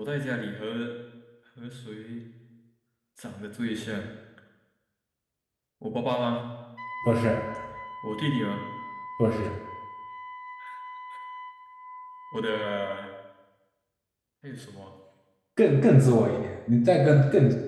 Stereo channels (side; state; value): both; identical; correlation 1.00